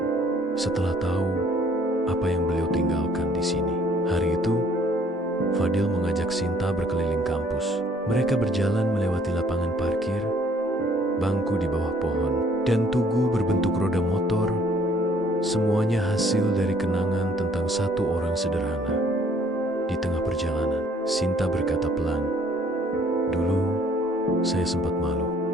setelah tahu apa yang beliau tinggalkan di sini. Hari itu, Fadil mengajak Sinta berkeliling kampus. Mereka berjalan melewati lapangan parkir, bangku di bawah pohon, dan tugu berbentuk roda motor. Semuanya hasil dari kenangan tentang satu orang sederhana. Di tengah perjalanan, Sinta berkata pelan, "Dulu, saya sempat malu.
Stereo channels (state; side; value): normal; both; correlation 0.60